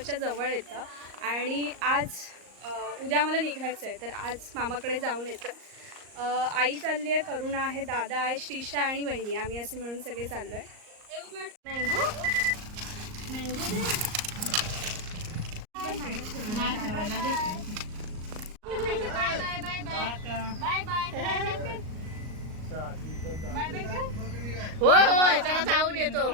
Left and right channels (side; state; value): left; late; 38 ms